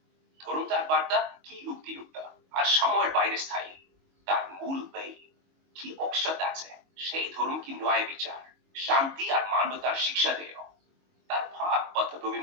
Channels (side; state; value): left; late; 22 ms